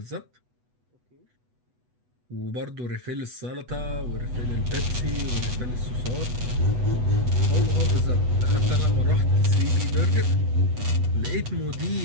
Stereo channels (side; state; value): left; late; 8.1 ms